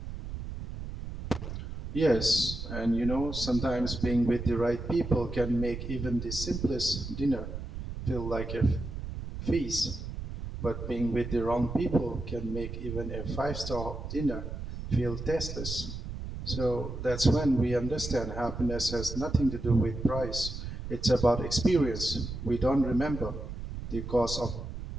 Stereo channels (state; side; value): noise; right; rumble, 7 dB below the sound